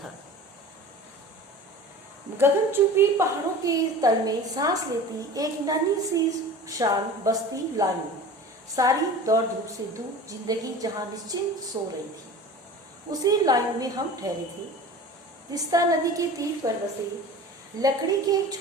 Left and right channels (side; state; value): both; normal; correlation 0.38